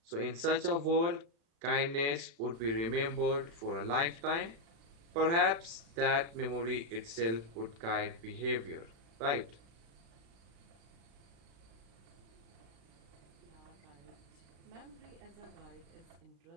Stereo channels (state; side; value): late; left; 36 ms